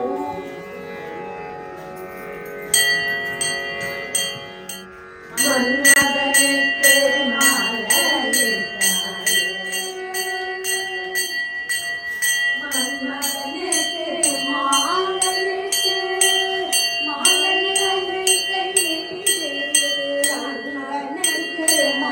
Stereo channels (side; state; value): both; identical; correlation 1.00